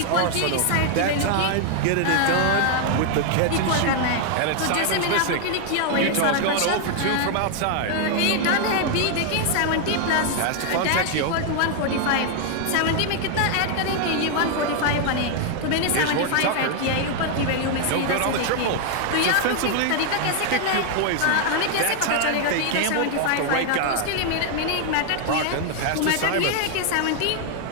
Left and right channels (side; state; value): both; different; correlation 0.00